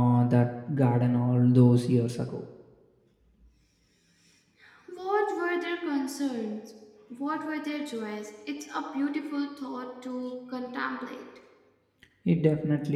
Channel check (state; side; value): identical; both; correlation 1.00